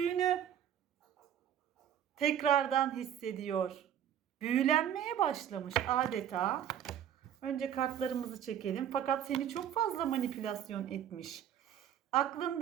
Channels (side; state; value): left; quieter; 10.0 dB